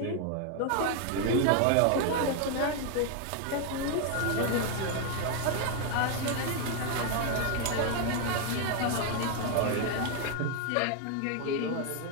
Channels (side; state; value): both; different; correlation 0.01